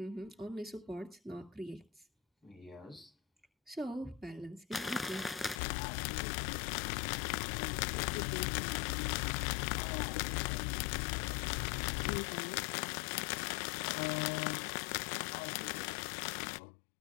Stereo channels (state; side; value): drops out; right; at 5.6 s